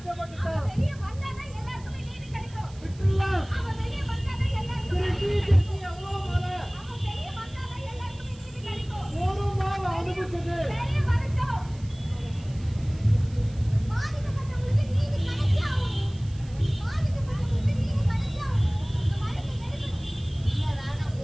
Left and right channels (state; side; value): noise; right; hiss, 24 dB below the sound